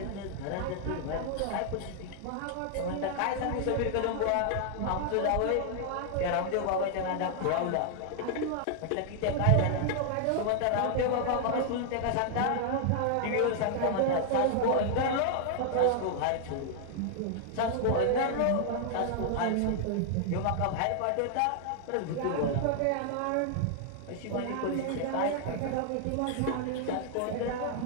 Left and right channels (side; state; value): both; different; correlation 0.00